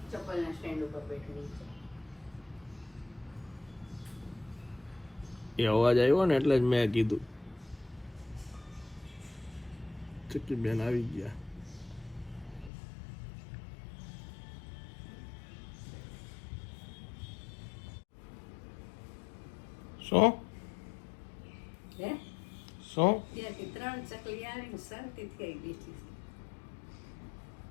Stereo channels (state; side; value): drops out; right; at 12.7 s